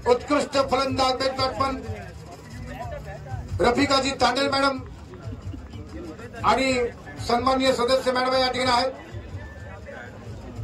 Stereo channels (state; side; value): identical; both; correlation 1.00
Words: उत्कृष्ट फलंदाज बेस्ट बॅट्समन रफिकाजी तांडेल मॅडम आणि सन्माननीय सदस्य मॅडम या ठिकाणी आहेत.